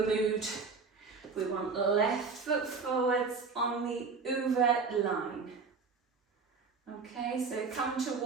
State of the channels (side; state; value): left; quieter; 4.8 dB